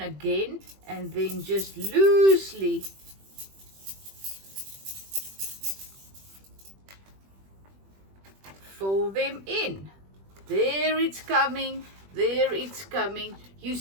again and then just loosely fill them in. There it's coming. There it's coming. You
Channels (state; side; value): late; left; 21 ms